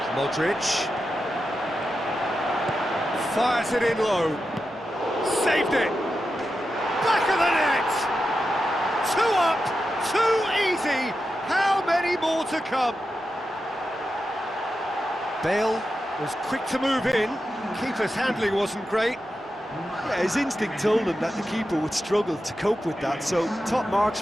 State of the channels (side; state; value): both; normal; correlation 0.90